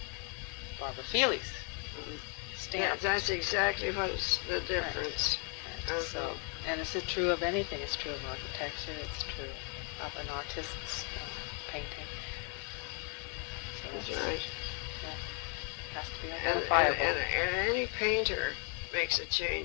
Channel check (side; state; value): right; quieter; 39.4 dB